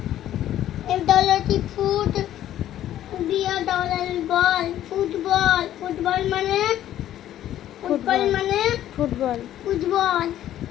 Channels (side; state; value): right; quieter; 12.3 dB